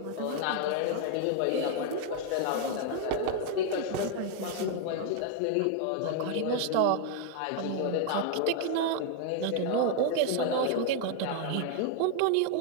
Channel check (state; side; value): different; both; correlation 0.00